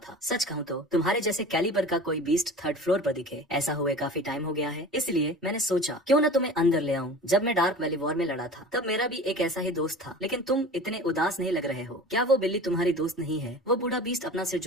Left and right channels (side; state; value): both; normal; correlation 0.37